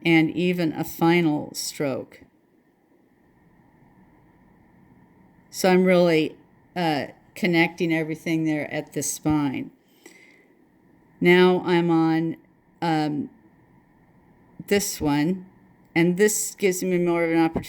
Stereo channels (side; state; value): both; identical; correlation 1.00